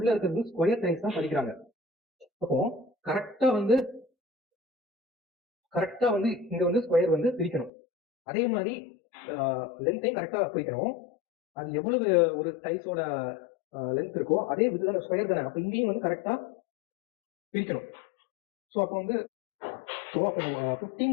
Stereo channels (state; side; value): drops out; right; at 7.7 s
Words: இருக்கிறது ஸ்கொயர் டைல்ஸ் தான் பதிக்கிறாங்க. அப்போ கரெக்டாக வந்து இங்க வந்து ஸ்கொயர் வந்து பிரிக்கணும். அதே மாதிரி லென்த்தையும் கரெக்டாக பிரிக்கணும். அது எவ்வளவு ஒரு டைல்ஸோட லென்த் இருக்கோ அதே இதுதான் ஸ்கொயர் தானே, அப்போ இங்கேயும் வந்து கரெக்டாக பிரிக்கணும். ஸோ அப்போ வந்து